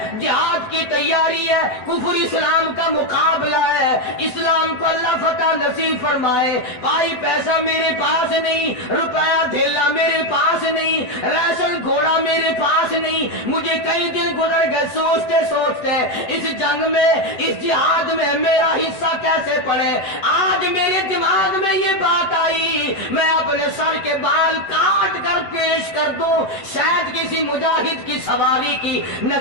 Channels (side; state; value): right; late; 8.0 ms